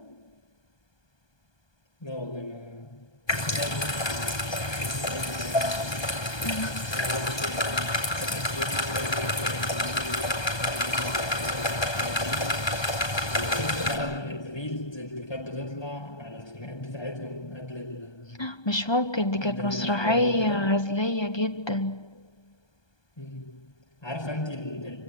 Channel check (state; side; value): late; right; 1.2 ms